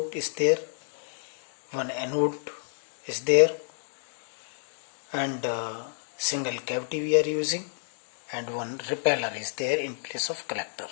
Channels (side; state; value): right; silent; digital silence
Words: is there, one anode is there, and single cavity we are using, and one repeller is there in place of collector.